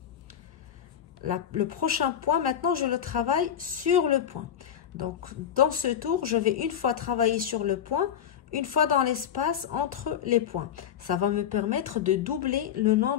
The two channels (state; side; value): quieter; right; 9.3 dB